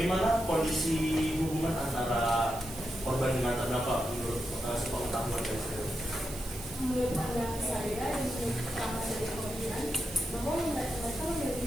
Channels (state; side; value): noise; right; hiss, 13 dB below the sound